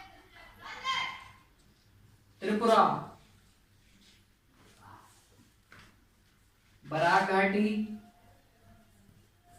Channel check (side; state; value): both; identical; correlation 1.00